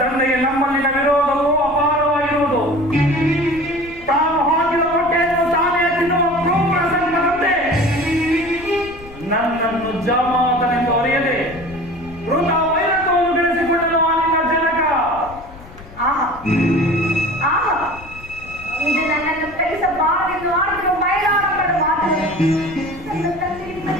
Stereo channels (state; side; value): noise; left; rumble, 18 dB below the sound